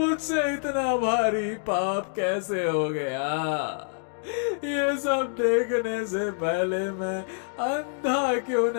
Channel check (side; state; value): right; silent; digital silence